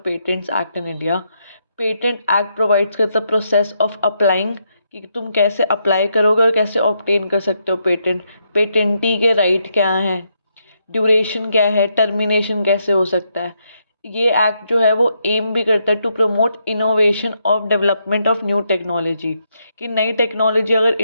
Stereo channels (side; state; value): both; inverted; correlation -0.79